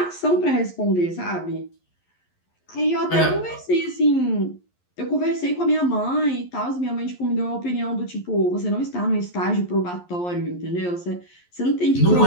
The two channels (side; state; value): right; late; 11 ms